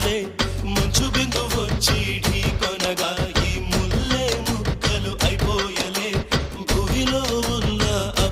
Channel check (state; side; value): identical; both; correlation 1.00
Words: మంచు బిందు వచ్చి ఢీకొనగా ఈ ముల్లే ముక్కలు అయిపోయలే భూమిలో ఉన్న